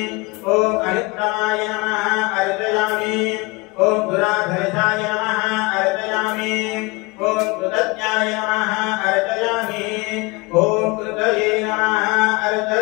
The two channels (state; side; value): quieter; right; 25.3 dB